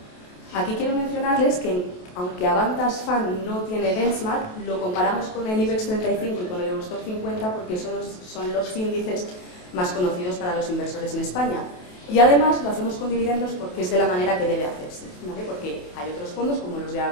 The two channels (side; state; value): right; late; 28 ms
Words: Aquí quiero mencionarles que, aunque Avantas Fund no tiene benchmark, lo comparamos con el IBEX 35 y con el Eurostoxx 50 porque son los índices más conocidos para los inversores en España. Y además lo hacemos con dividendos porque es de la manera que debe hacerse, ¿vale? Porque hay otros fondos como los de